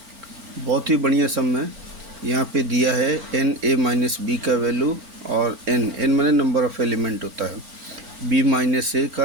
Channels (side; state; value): left; late; 4.4 ms